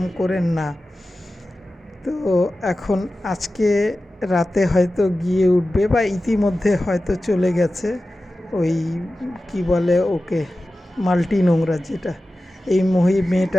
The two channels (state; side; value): normal; both; correlation 0.95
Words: করে না। তো এখন আজকে রাতে হয়তো গিয়ে উঠবে, বা ইতিমধ্যে হয়তো চলে গেছে ওই কি বলে ওকে, মাল্টি নোংরা যেটা। এই